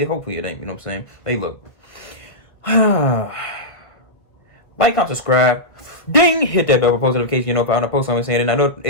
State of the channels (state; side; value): late; right; 1.5 ms